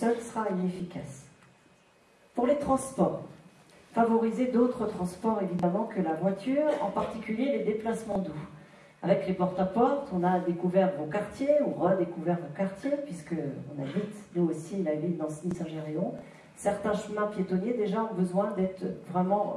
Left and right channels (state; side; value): identical; both; correlation 1.00